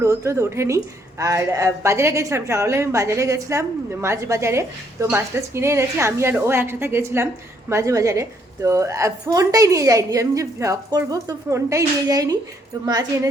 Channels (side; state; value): both; normal; correlation 0.69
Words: রোদ টোদ ওঠেনি। আর বাজারে গেছিলাম, সকালে আমি বাজারে গেছিলাম, মাছ বাজারে। তো মাছ টাছ কিনে এনেছি, আমি আর ও একসাথে গেছিলাম মাছ বাজারে। তো ফোনটাই নিয়ে যাইনি, আমি যে ভ্লগ করবো তো ফোনটাই নিয়ে যাইনি। তো মাছ